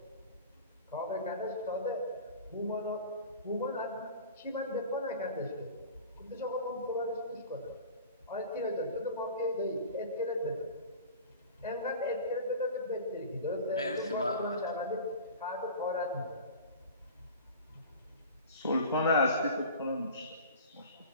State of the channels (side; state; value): both; inverted; correlation -0.38